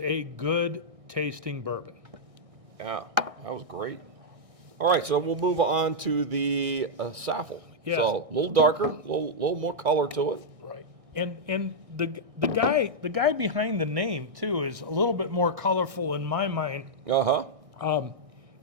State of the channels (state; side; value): late; left; 1.6 ms